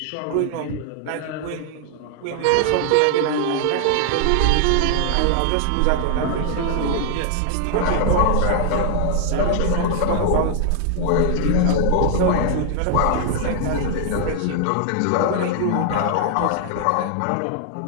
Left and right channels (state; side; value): different; both; correlation 0.00